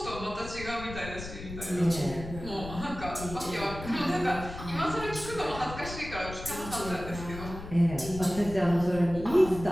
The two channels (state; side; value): noise; left; rumble, 11 dB below the sound